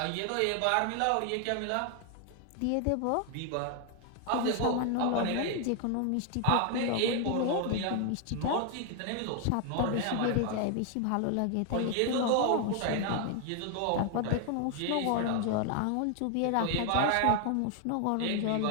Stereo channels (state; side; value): different; both; correlation 0.00